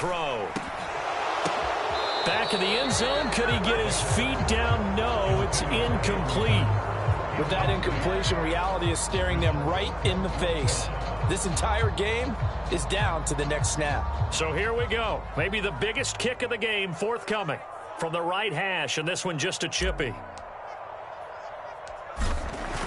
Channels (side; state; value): both; identical; correlation 1.00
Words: Back in the end zone. Could he get his feet down? No, it's incomplete. With that incompletion, reality is staring them right in the face. This entire game is down to the next snap. So here we go. Maybe the biggest kick of the game forthcoming from the right hash, and this one just a chippy.